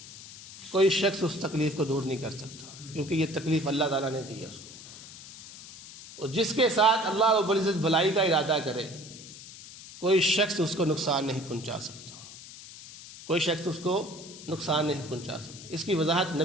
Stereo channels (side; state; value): left; noise; hiss, 16 dB below the sound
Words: کوئی شخص اس تکلیف کو دور نہیں کر سکتا، کیونکہ یہ تکلیف اللہ تعالیٰ نے دی ہے اس کو۔ اور جس کے ساتھ اللہ رب العزت بھلائی کا ارادہ کرے، کوئی شخص اس کو نقصان نہیں پہنچا سکتا، کوئی شخص اس کو نقصان نہیں پہنچا سکتا۔ اس کی وضاحت